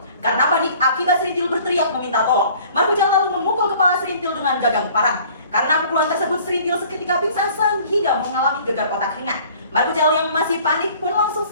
Karena panik akibat serintil berteriak meminta tolong, Markucal lalu memukul kepala serintil dengan gagang parang. Karena pukulan tersebut, serintil seketika pingsan sehingga mengalami gegar otak ringan. Markucal yang masih panik pun langsung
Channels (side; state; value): both; inverted; correlation -0.52